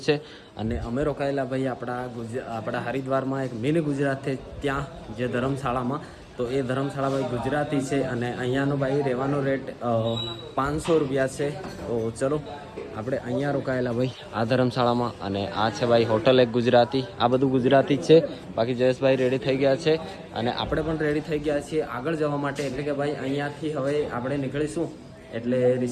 છે અને અમે રોકાયેલા ભાઈ આપણા હરિદ્વારમાં એક મિની ગુજરાત છે ત્યાં, જે ધર્મશાળામાં. તો એ ધર્મશાળા ભાઈ ગુજરાતી છે અને અહીંયાનો ભાઈ રહેવાનો રેટ 500 રૂપિયા છે. તો ચલો આપણે અહીંયા રોકાયેલા ભાઈ આ ધર્મશાળામાં. અને આ છે ભાઈ હોટલ એક ગુજરાતી. આ બધું ગુજરાતી જ છે. બાકી જયેશભાઈ રેડી થઈ ગયા છે અને આપણે પણ રેડી થઈ ગયા છીએ આગળ જવા માટે. એટલે કે ભાઈ અહીંયાથી હવે આપણે નીકળીશું એટલે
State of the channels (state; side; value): identical; both; correlation 1.00